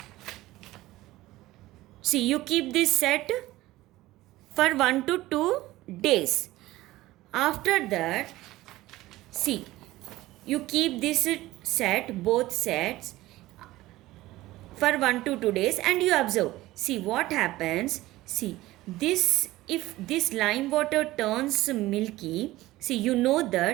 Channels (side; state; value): left; quieter; 17.3 dB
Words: see, you keep this set for 1 to 2 days. After that, see, you keep this set, both sets, for 1 to 2 days, and you observe. See what happens. See, if this lime water turns milky, see, you know